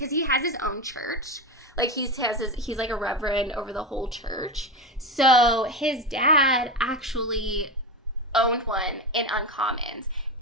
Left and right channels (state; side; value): normal; both; correlation 0.18